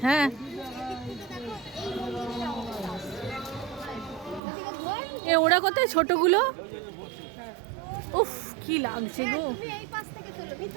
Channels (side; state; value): left; drops out; at 4.4 s